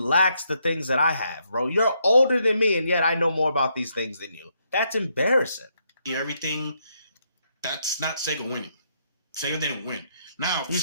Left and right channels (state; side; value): inverted; both; correlation -0.76